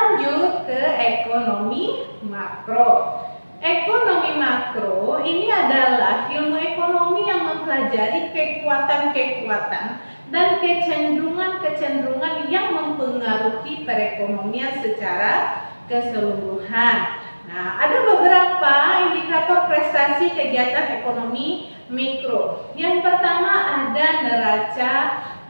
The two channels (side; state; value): both; inverted; correlation -1.00